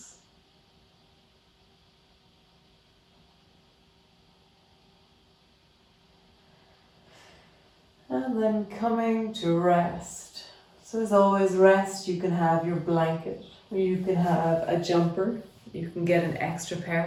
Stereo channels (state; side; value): identical; both; correlation 1.00